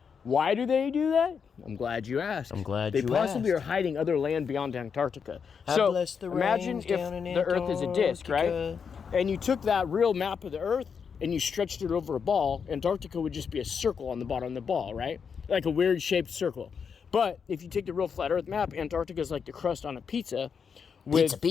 Why do they do that? I'm glad you asked. They possibly are hiding other land beyond Antarctica. So imagine if the earth is a disc, right? And you took that real map of the earth and you stretched it over a ball. Antarctica would just be a circle on the bottom of the ball, right? Like a weird shaped circle. But if you take the real flat earth map, Antarctica is like the crust on a pizza, with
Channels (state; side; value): quieter; right; 6.4 dB